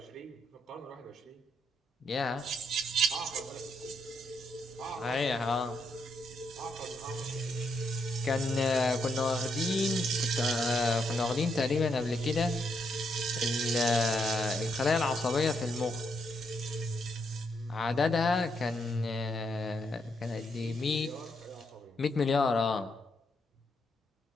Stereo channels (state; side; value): normal; both; correlation 0.78